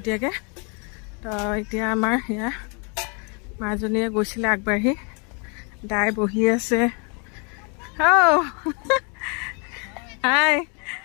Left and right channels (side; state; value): right; quieter; 34.8 dB